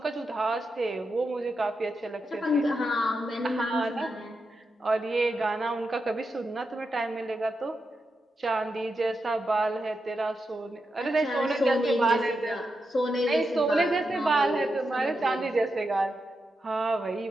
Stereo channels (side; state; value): both; normal; correlation 0.87